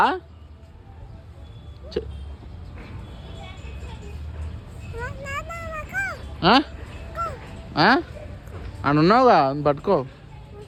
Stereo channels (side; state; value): both; identical; correlation 1.00